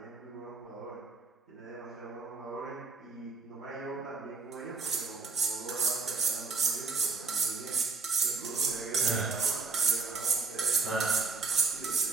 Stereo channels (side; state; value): left; quieter; 4.3 dB